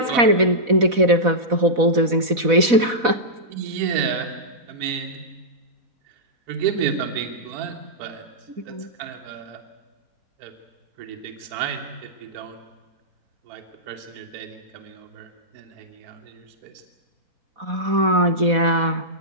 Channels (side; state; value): left; late; 4.1 ms